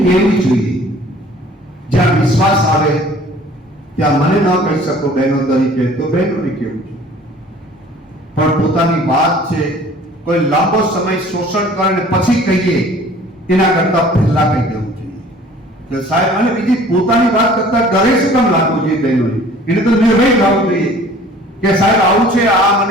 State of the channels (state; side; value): normal; both; correlation 0.50